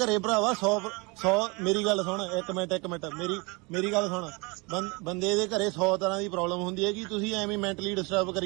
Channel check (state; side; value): quieter; left; 28.2 dB